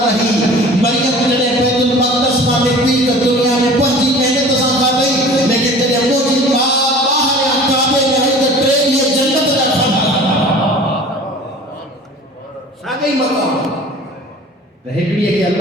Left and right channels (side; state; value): both; normal; correlation 0.43